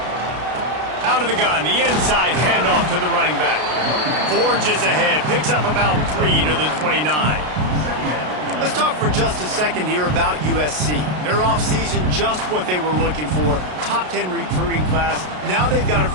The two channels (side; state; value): left; late; 33 ms